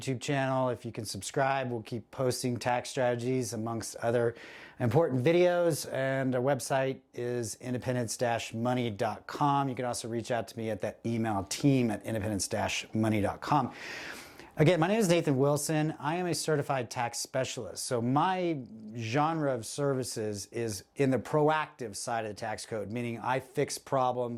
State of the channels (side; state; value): both; identical; correlation 1.00